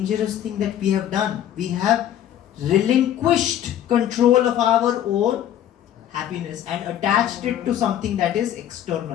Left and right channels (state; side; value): quieter; right; 11.2 dB